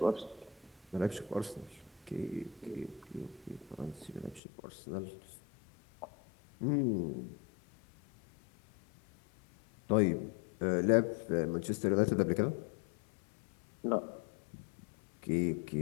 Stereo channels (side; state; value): right; drops out; at 4.4 s